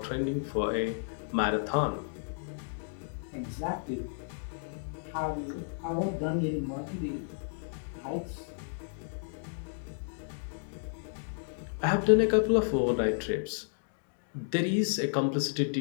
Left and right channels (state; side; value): silent; right; digital silence